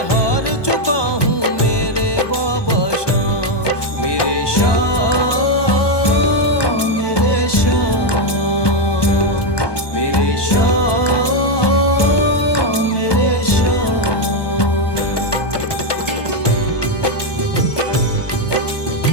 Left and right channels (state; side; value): late; right; 1.2 ms